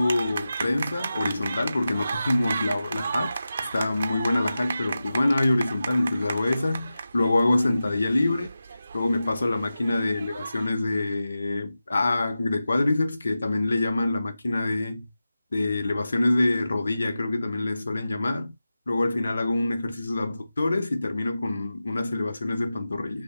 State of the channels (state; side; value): inverted; both; correlation -0.93